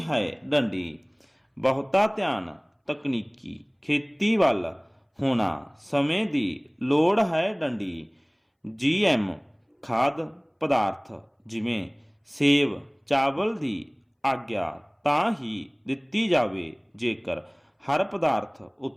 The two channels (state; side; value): identical; both; correlation 1.00